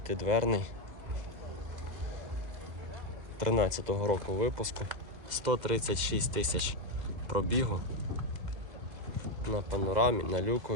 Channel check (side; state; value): left; late; 2.1 ms